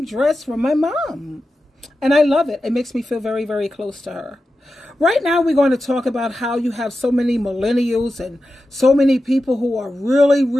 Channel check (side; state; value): both; normal; correlation 0.91